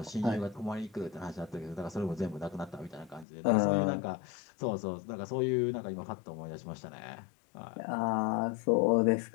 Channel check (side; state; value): right; drops out; at 3.2 s